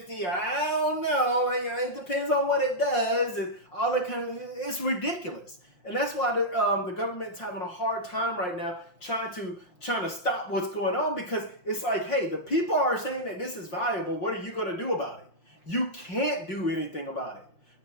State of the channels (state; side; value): late; right; 5.6 ms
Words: I don't know. It depends on what it does and all that kind of. It's ridiculous, and that's why the government's having a hard time right now trying to stop what's going on, because it's like, hey, the people are saying that this is valuable. What are you going to do about it? You can't do anything about it,